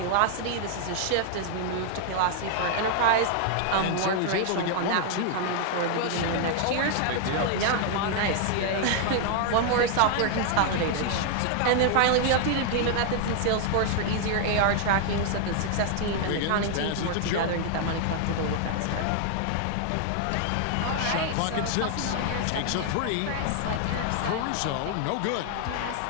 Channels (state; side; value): different; both; correlation 0.00